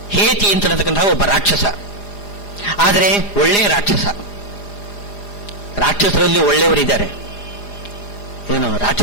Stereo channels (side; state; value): right; late; 4.9 ms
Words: ಹೇತಿ ಅಂತಕ್ಕಂತಹ ಒಬ್ಬ ರಾಕ್ಷಸ. ಆದರೆ ಒಳ್ಳೆಯ ರಾಕ್ಷಸ. ರಾಕ್ಷಸರಲ್ಲಿ ಒಳ್ಳೆಯವರಿದ್ದಾರೆ. ಏನು